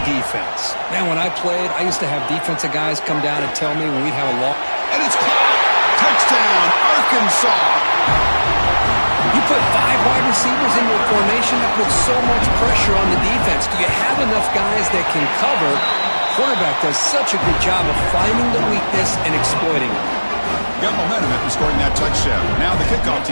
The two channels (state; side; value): inverted; both; correlation -1.00